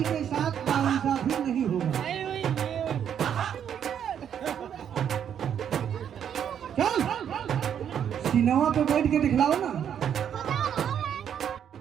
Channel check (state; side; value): quieter; left; 8.8 dB